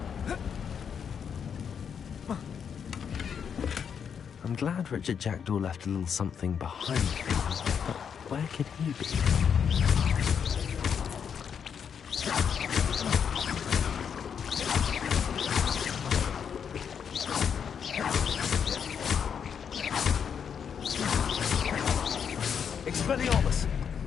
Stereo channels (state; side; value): quieter; right; 7.4 dB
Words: I'm glad Richard Jackdaw left a little something behind him, but where could he be? Expelliarmus.